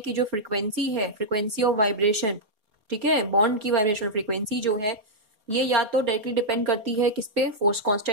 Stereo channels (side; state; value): left; late; 4.7 ms